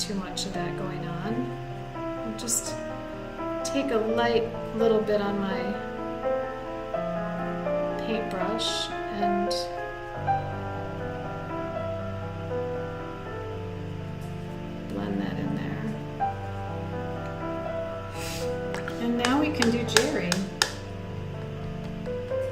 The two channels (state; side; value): identical; both; correlation 1.00